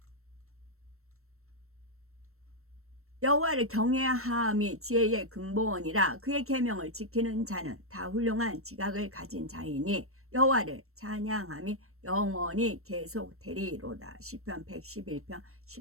여호와를 경외함이 지혜의 근본이라 그의 계명을 지키는 자는 다 훌륭한 지각을 가진 자이니 여호와를 찬양함이 영원히 계속되리로다. 시편 111편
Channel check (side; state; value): left; late; 0.63 ms